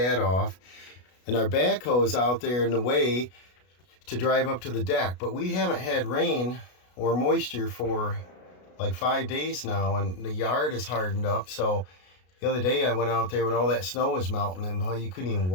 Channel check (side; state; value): right; late; 33 ms